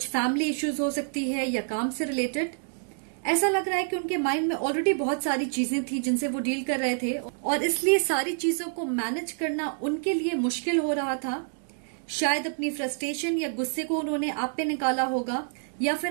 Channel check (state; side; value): silent; left; digital silence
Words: फैमिली इश्यूज हो सकती है या काम से रिलेटेड। ऐसा लग रहा है कि उनके माइंड में ऑलरेडी बहुत सारी चीजें थी जिनसे वो डील कर रहे थे और इसलिए सारी चीजों को मैनेज करना उनके लिए मुश्किल हो रहा था। शायद अपनी फ्रस्ट्रेशन या गुस्से को उन्होंने आप पे निकाला होगा, या फिर